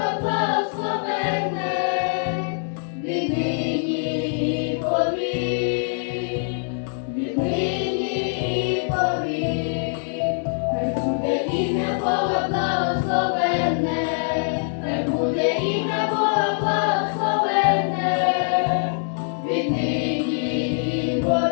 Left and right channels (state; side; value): silent; right; digital silence